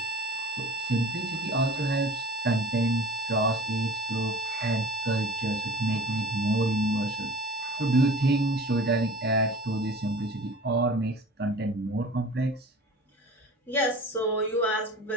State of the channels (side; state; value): both; normal; correlation 0.41